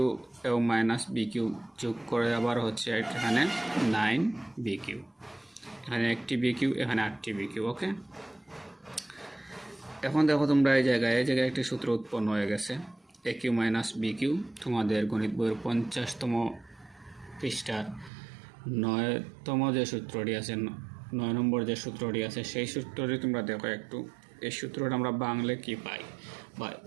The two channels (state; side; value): drops out; left; at 18.1 s